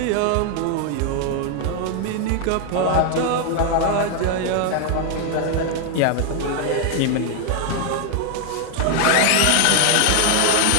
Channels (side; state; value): both; different; correlation 0.01